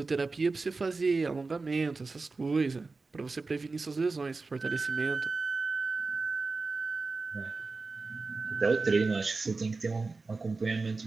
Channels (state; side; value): quieter; left; 3.9 dB